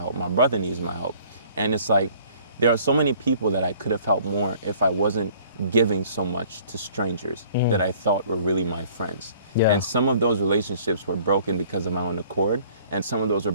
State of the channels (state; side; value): inverted; both; correlation -0.55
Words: My brother needs my help. And it's like, there are so many people that I could have helped more if I wasn't giving so much to strangers that I thought were really my friends. Yeah. And some of those relationships were broken because of my own accord, and some of those were